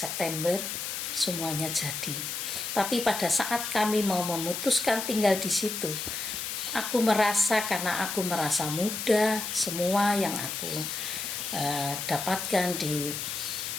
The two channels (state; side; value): noise; left; hiss, 4 dB below the sound